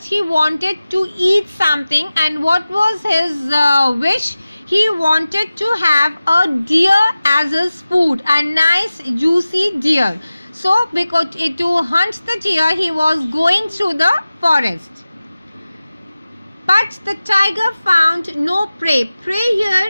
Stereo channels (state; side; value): inverted; both; correlation -0.96